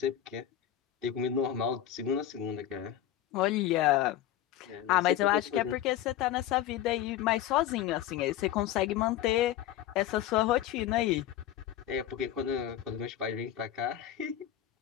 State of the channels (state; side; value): quieter; right; 11.9 dB